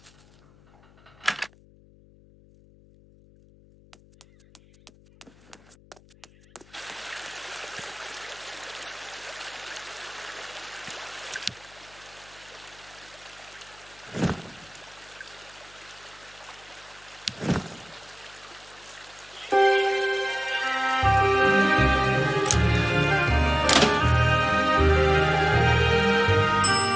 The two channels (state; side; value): noise; left; hum, 27 dB below the sound